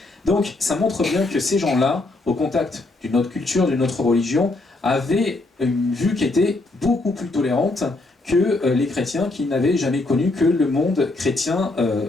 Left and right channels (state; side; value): quieter; right; 3.0 dB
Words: Donc ça montre bien que ces gens-là, au contact d'une autre culture, d'une autre religion, avaient une vue qui était beaucoup plus tolérante que les chrétiens qui n'avaient jamais connu que le monde chrétien